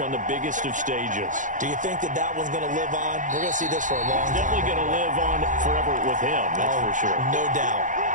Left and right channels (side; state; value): left; late; 0.37 ms